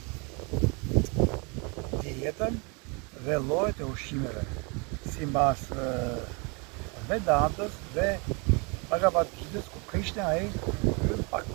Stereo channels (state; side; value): quieter; left; 31.3 dB